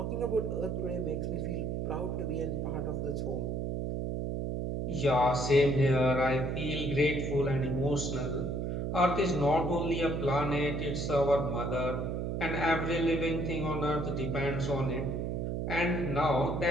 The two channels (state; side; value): noise; right; hum, 1 dB below the sound